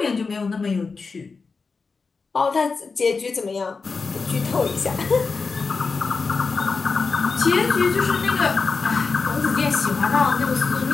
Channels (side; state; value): right; quieter; 4.6 dB